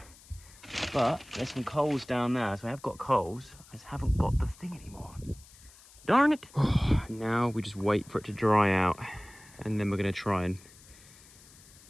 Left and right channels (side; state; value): left; noise; hiss, 23 dB below the sound